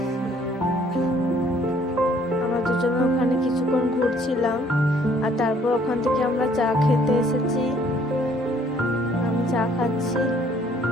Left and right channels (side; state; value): both; normal; correlation 0.61